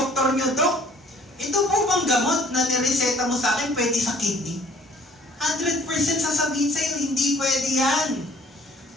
niyo, Dok, ito po bang gamot na nireseta mo sa akin pwede sa kidney? 100% sasabihin sa'yo, hindi pwede yan.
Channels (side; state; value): both; normal; correlation 0.56